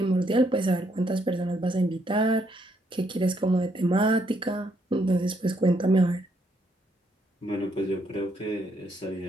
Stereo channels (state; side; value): normal; both; correlation 0.73